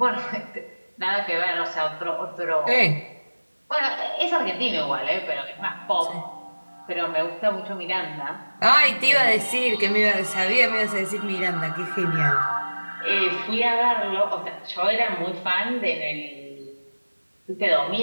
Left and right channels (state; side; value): inverted; both; correlation -1.00